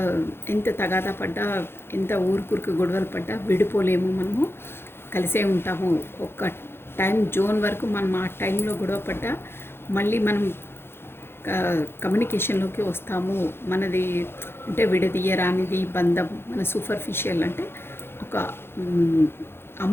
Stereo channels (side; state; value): right; late; 0.11 ms